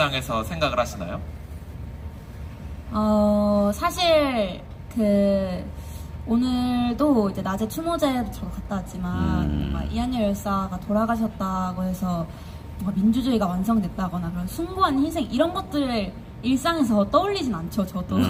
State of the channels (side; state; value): both; identical; correlation 1.00